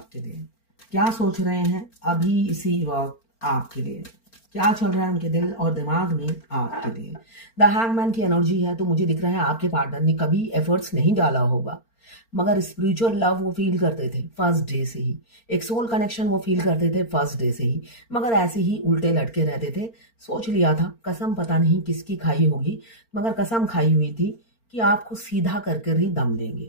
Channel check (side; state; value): right; late; 4.4 ms